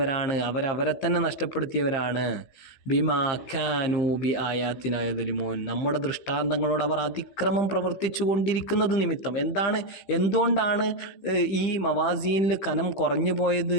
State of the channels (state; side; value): late; right; 15 ms